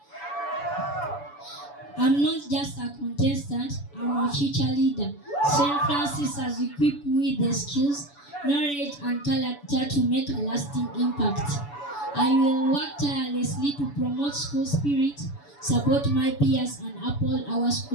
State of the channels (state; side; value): late; right; 7.0 ms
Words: I'm not just a contestant, I'm a future leader. St. Francis has equipped me with the skills, knowledge and character to make a lasting impact. I will work tirelessly to promote school spirit, support my peers and uphold our